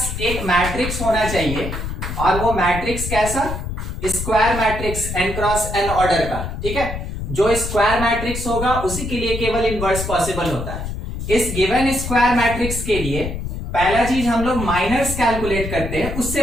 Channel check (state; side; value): noise; left; rumble, 6 dB below the sound